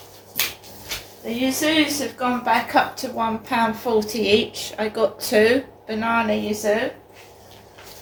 The Yuzus have gone back up to £1.40 each. I got 2 banana Yuzu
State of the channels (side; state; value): both; identical; correlation 1.00